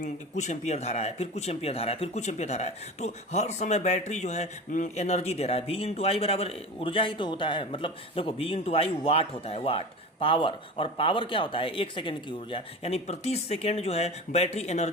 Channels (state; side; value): normal; both; correlation 0.31